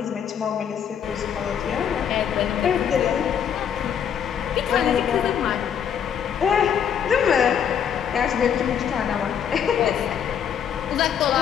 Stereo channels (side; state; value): right; quieter; 8.4 dB